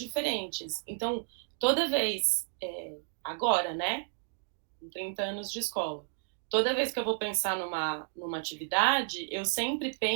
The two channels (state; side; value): silent; left; digital silence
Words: Então, toda vez, agora, né, com 30 anos de escola, toda vez que eu vou pensar numa atividade, eu sempre